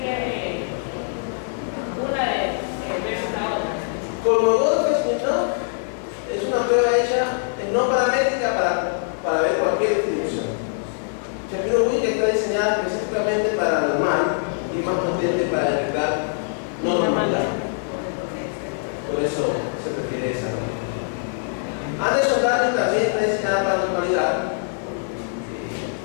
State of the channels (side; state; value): right; silent; 56 dB below the other